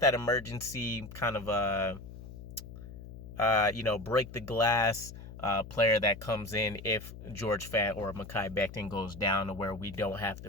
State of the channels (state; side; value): noise; left; hum, 13 dB below the sound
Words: emergency kind of break the glass player that comes in if George Fant or Mekhi Becton goes down, to where we don't have to